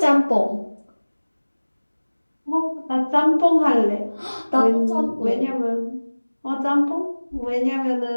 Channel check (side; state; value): both; inverted; correlation -1.00